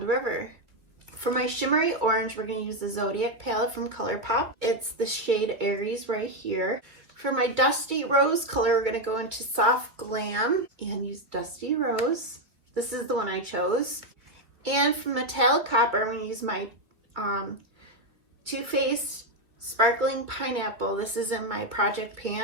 River. For my shimmery orange, we're going to use the Zodiac palette from Colourpop. It's the shade Aries right here. For my dusty rose color, we're going to go into Soft Glam and use Dusty Rose. This is the one I chose. And for metallic copper, I'm going to use my Too Faced Sparkling Pineapple. This is in my Project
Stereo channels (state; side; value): late; left; 2.3 ms